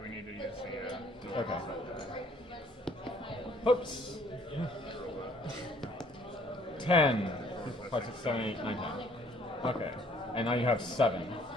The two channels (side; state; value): both; normal; correlation 0.60